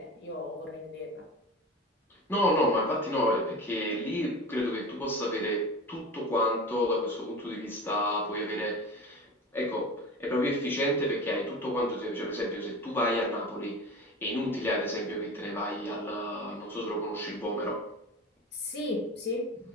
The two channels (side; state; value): both; normal; correlation 0.32